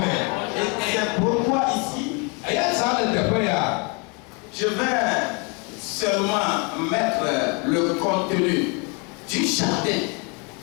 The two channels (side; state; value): right; quieter; 32.9 dB